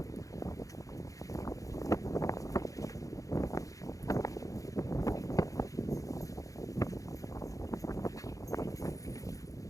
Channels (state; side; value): late; right; 0.16 ms